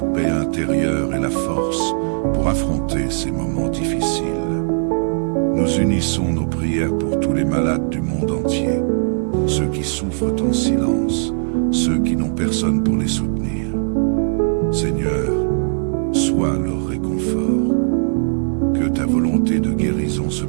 paix intérieure et la force pour affronter ces moments difficiles. Nous unissons nos prières pour tous les malades du monde entier, ceux qui souffrent en silence, ceux qui n'ont personne pour les soutenir. Seigneur, sois leur réconfort. Que ta volonté de guérison se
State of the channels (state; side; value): silent; left; digital silence